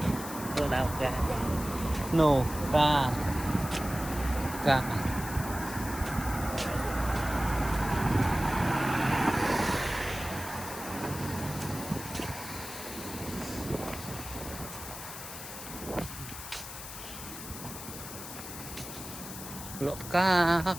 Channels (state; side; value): noise; left; hiss, 10 dB below the sound